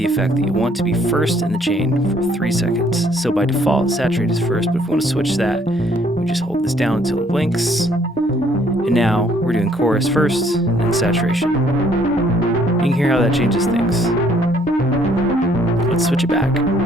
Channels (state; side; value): normal; both; correlation 0.64